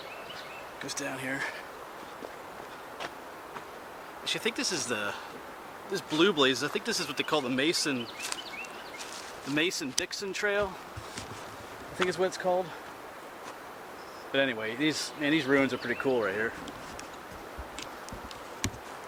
goes down here. Actually, I think this is this Blue Blaze. I think this is what they call the Mason-Dixon Trail. I think is what it's called. But anyway, these ruins are pretty cool right here.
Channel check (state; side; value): identical; both; correlation 1.00